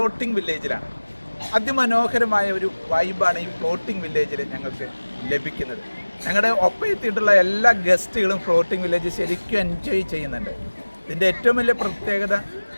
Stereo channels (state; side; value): inverted; both; correlation -1.00